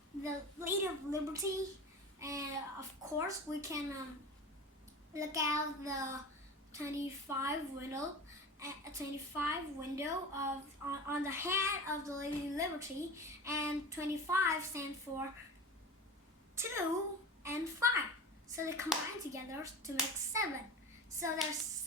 Lady of Liberty, and of course we can look out the 25 window of on the head of the Lady of Liberty, and 25 stand for 2 and 5. So they combine together to make 7. So there's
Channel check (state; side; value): normal; both; correlation 0.32